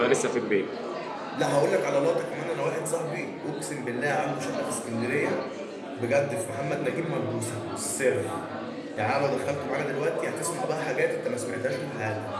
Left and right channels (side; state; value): both; identical; correlation 1.00